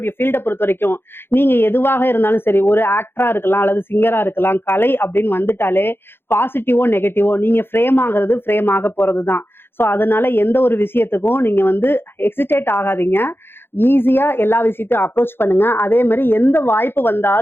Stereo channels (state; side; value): late; right; 0.11 ms